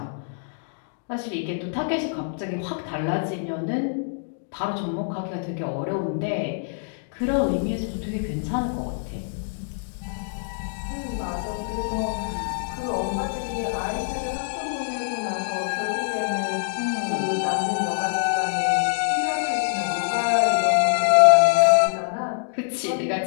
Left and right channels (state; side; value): silent; right; digital silence